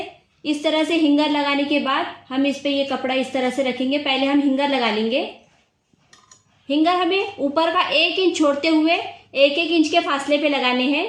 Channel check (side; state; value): both; identical; correlation 1.00